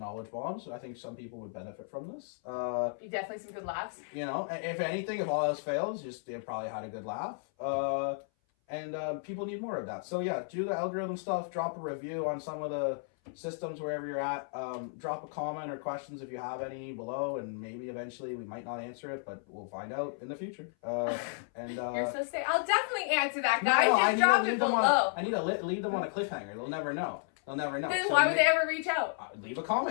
bombs. I think some people would benefit from this. Definitely some good laughs. You know, if anything, if all else fails, just they probably had a good laugh. And people need more of that. So yeah, do the algorithm stuff. Drop a review on some of the systems wherever you're at. Drop a comment or questions if you have any below, and maybe eventually we might not answer it, but we'll find out in the future. You're so sick. I'll definitely answer that, guys. Just drop it below. I need to leave them on a cliffhanger. They'll never know. Then why would they ever reach out? Leave a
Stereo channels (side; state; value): right; silent; 56 dB below the other